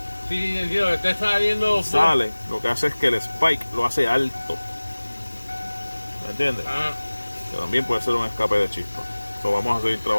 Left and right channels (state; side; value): inverted; both; correlation -1.00